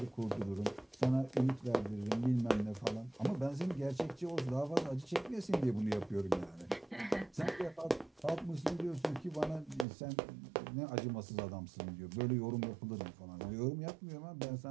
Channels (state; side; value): drops out; left; at 9.9 s